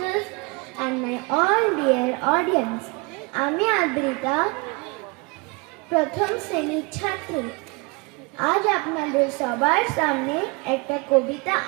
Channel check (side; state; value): left; quieter; 28.1 dB